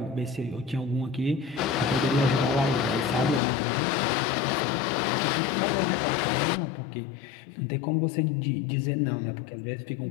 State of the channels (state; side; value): drops out; right; at 3.4 s